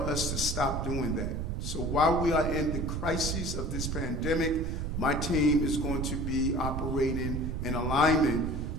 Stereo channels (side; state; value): right; noise; rumble, 2 dB below the sound